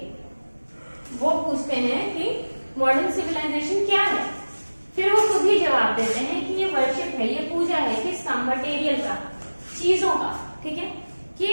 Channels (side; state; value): both; inverted; correlation -1.00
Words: वो पूछते हैं कि मॉडर्न सिविलाइजेशन क्या है, फिर वो खुद ही जवाब देते हैं कि ये वर्शिप है, ये पूजा है किसका? मटेरियल का, चीजों का। ठीक है, कि